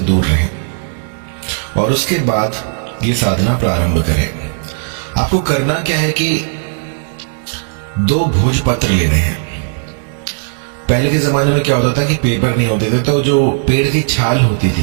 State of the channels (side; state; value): left; silent; 70 dB below the other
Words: रहें, और उसके बाद ये साधना प्रारंभ करें। आपको करना क्या है कि 2 भोजपत्र लेने हैं। पहले के जमाने में क्या होता था कि पेपर नहीं होते थे, तो जो पेड़ की छाल होती